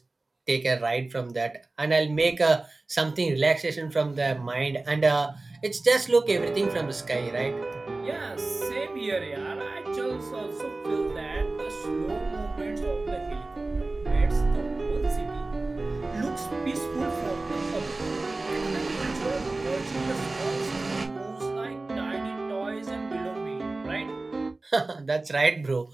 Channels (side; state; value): left; quieter; 3.2 dB